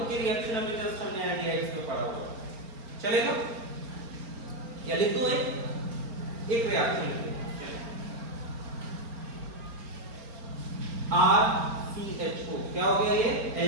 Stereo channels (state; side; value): late; left; 4.4 ms